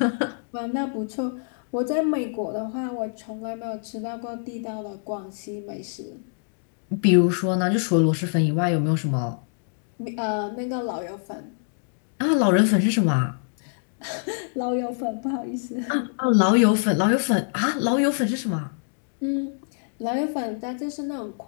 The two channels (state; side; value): silent; right; digital silence